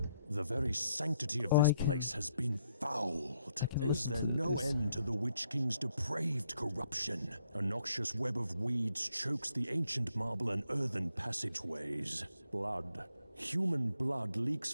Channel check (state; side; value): inverted; both; correlation -0.74